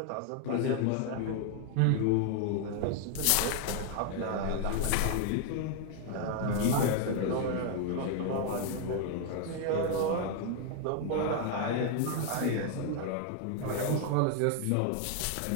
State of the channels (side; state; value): both; different; correlation 0.00